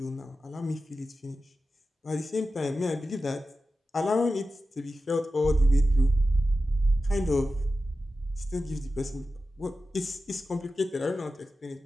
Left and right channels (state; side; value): normal; both; correlation 0.93